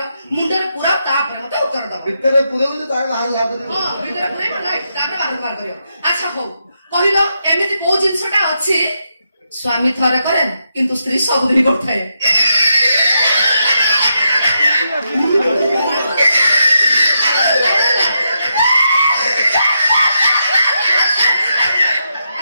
ମୁଣ୍ଡରେ ପୁରାଅ ତାପରେ ମତେ ଉତ୍ତର ଦବ। ଭିତରେ ପୁରେଇବୁ ତାର ବାହାର ବାହାର କରିବ। ହଁ ଭିତରେ ପୁରେଇବ ତାପରେ ବାହାର କରିବ। ଆଚ୍ଛା ହଉ କହିଲ ଏମିତି କୋଉ ଜିନିଷଟା ଅଛି ସ୍ୱାମୀ ଥରେ କରେ କିନ୍ତୁ ସ୍ତ୍ରୀ ସବୁଦିନ କରିଥାଏ।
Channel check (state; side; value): inverted; both; correlation -0.82